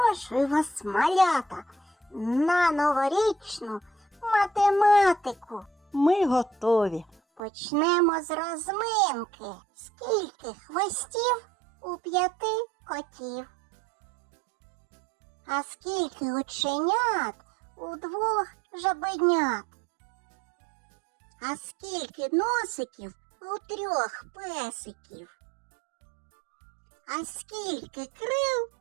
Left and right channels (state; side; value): drops out; left; at 7.4 s